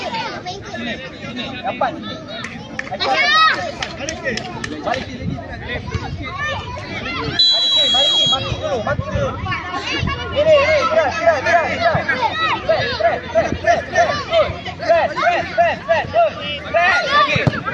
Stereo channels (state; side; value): identical; both; correlation 1.00